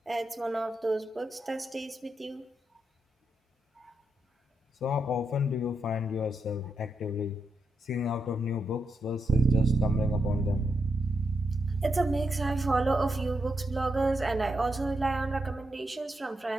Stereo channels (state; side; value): normal; both; correlation 0.83